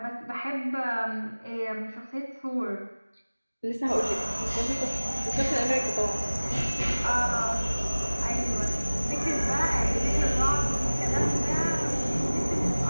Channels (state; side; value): inverted; both; correlation -1.00